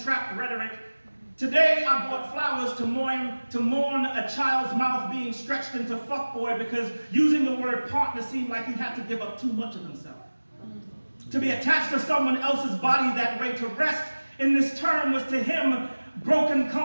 rhetoric? Today I bought flowers to mourn a child's mouth being stretched into fuckboy because using the word partner seemed like he had to give up too much of himself. To be attached to someone else's body that way, to rest in this term, was to him broken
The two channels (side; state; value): both; inverted; correlation -1.00